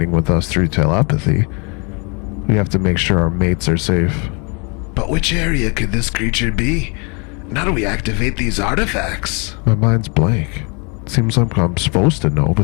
with us through telepathy. We have to make sure our mates are safe. But which area could this creature be? And how do we activate these artifacts? My mind's blank. Seems like I'm supposed to know,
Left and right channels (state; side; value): quieter; right; 33.0 dB